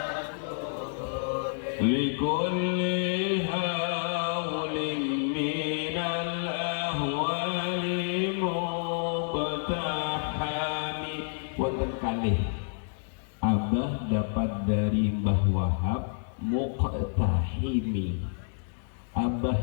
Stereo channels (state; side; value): silent; right; digital silence